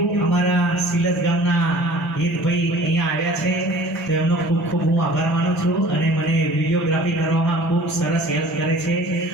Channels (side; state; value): both; normal; correlation 0.47